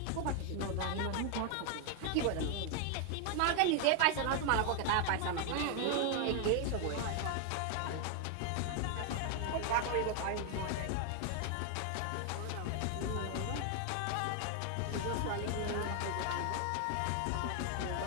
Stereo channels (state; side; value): different; both; correlation 0.00